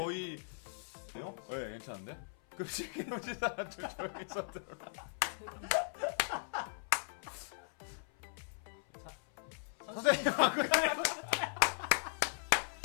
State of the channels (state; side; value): silent; right; 53 dB below the other